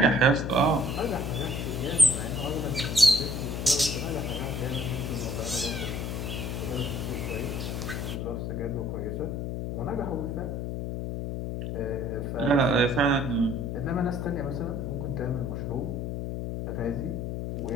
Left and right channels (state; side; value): noise; left; hum, 3 dB below the sound